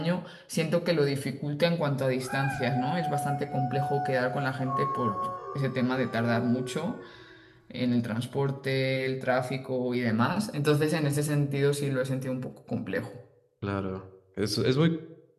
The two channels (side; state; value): both; identical; correlation 1.00